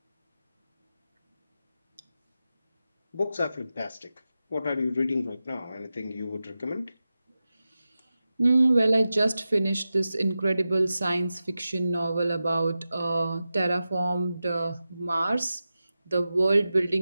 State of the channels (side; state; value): both; inverted; correlation -0.93